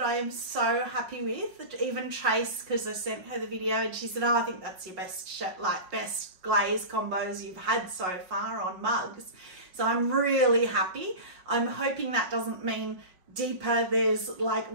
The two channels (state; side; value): late; left; 5.2 ms